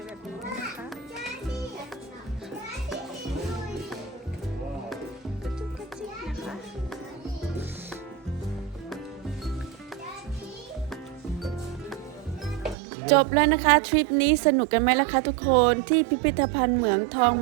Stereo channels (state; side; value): drops out; left; at 12.8 s